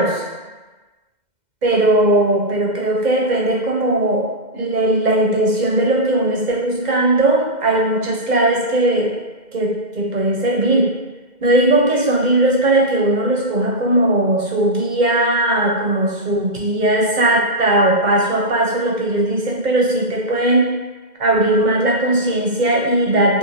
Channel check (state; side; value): late; left; 2.1 ms